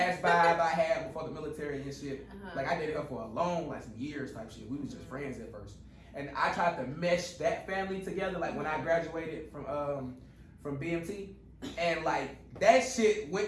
vibe I had before the military and shit. Like I dated her for a long, like some years type shit. We was just friends at first. And I tried to mesh that family together. Like when I graduated from BMT, and like that shit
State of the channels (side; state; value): both; identical; correlation 1.00